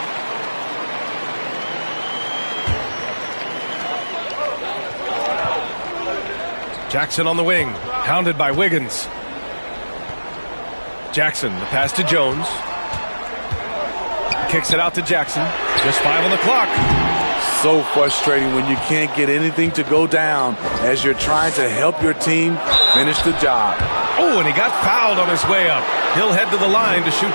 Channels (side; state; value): both; inverted; correlation -1.00